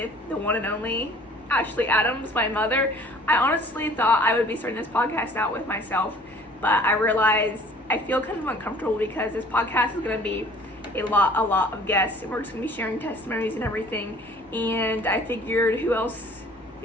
the one and only Ashley Adams, my mother. I honestly thought I would be starting this podcast out with myself, but I realized I feel kind of uncomfortable because this podcast is going to be a lot of guests, and we're just going to be sharing testimonies and everything, and I figured who else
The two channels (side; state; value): both; normal; correlation 0.51